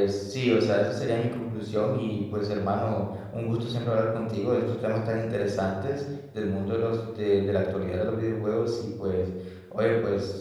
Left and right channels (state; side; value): identical; both; correlation 1.00